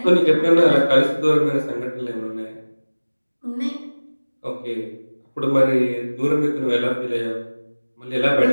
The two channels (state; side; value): inverted; both; correlation -1.00